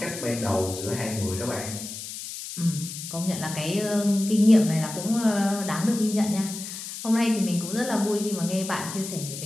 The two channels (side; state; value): left; noise; hiss, 9 dB below the sound